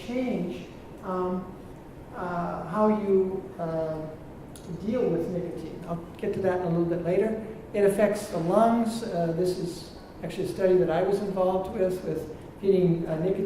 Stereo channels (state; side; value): identical; both; correlation 1.00